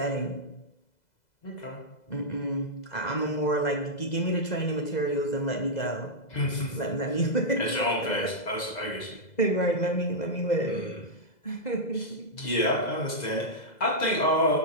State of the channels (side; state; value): right; late; 2.0 ms